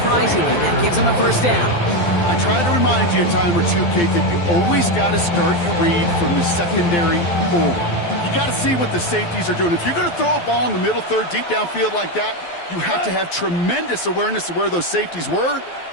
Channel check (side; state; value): right; late; 12 ms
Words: that gives him a 1st down. I try to remind you a time or two, Kate, that you always got to start your read from the secondary forward. You got to see what the safeties are doing. If you're going to throw a ball in the middle third, deep downfield like that, you have to have tremendous awareness of where those safeties were,